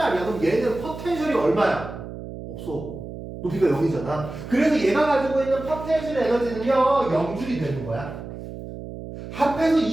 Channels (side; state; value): right; noise; hum, 11 dB below the sound